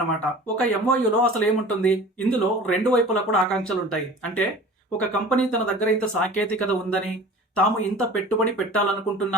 ఒక ఎంఓయులో అసలు ఏముంటుంది? ఇందులో రెండు వైపులా కూడా ఆకాంక్షలు ఉంటాయి. అంటే ఒక కంపెనీ తన దగ్గర ఇంత సాంకేతికత ఉందని, తాము ఇంత పెట్టుబడి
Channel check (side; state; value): both; normal; correlation 0.41